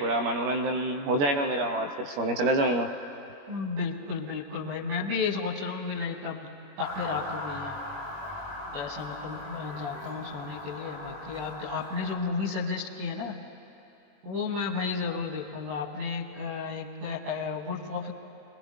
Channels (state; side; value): late; left; 21 ms